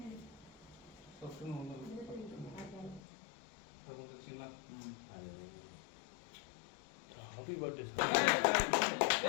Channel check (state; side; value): drops out; right; at 3.0 s